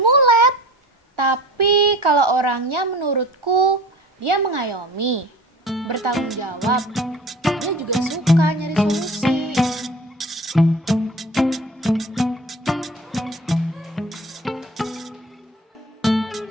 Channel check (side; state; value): both; normal; correlation 0.41